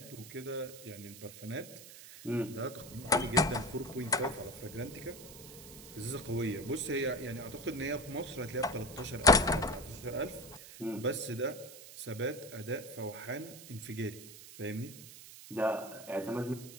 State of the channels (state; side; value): noise; right; hiss, 15 dB below the sound